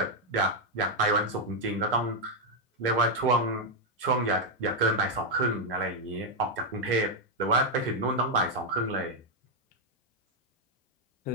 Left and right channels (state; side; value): normal; both; correlation 0.01